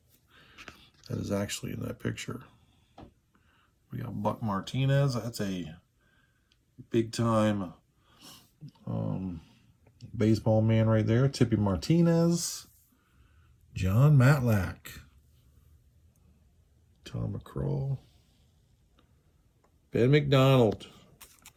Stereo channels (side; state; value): both; identical; correlation 1.00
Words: that is actually in that picture. We got Buck Martinez. That's a big-time baseball man right there. Tippy Martinez. John Matlack. Tom McCraw. Ben McDonald.